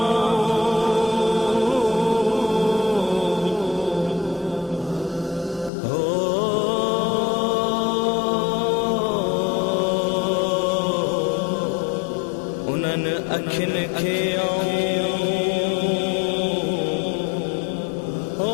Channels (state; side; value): drops out; right; at 5.7 s